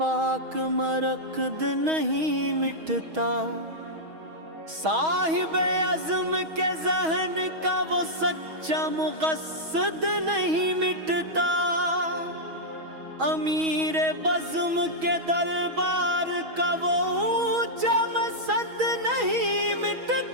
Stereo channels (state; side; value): late; left; 6.3 ms